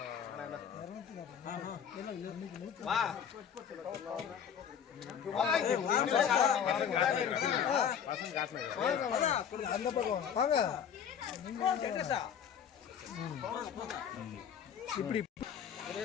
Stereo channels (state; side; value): quieter; right; 8.2 dB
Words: அந்த பக்கம் வாங்க. இப்படி